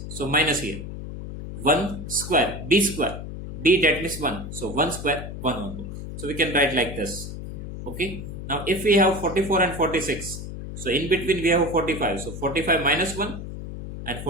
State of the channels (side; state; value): left; noise; hum, 9 dB below the sound